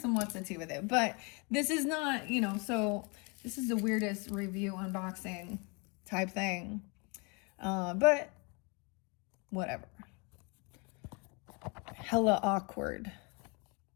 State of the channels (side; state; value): right; quieter; 31.5 dB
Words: what's a tea with it. But this is not, so this is the weirdest review unboxing type thing. But whatever. Hella awkward.